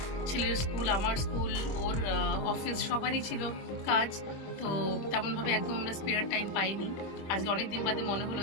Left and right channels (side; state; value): right; late; 25 ms